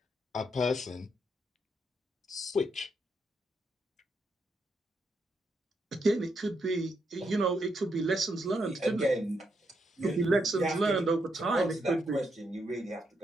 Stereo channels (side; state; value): both; normal; correlation 0.79